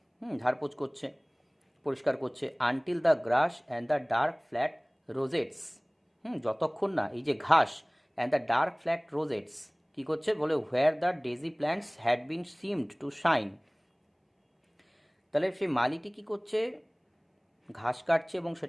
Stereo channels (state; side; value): identical; both; correlation 1.00